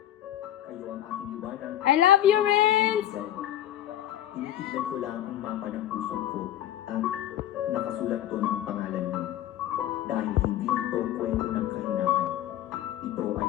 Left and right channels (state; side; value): quieter; right; 12.2 dB